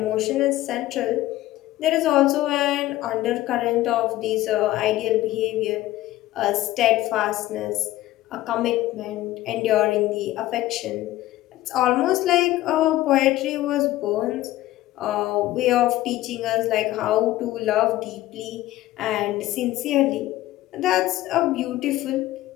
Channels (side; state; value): right; quieter; 15.8 dB